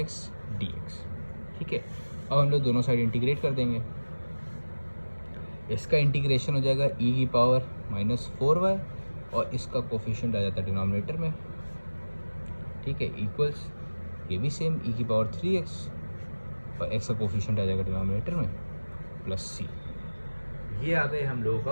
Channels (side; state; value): both; inverted; correlation -1.00